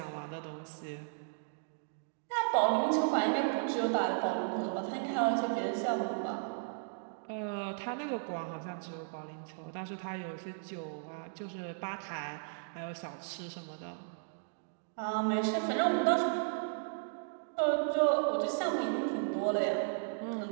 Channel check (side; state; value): left; silent; digital silence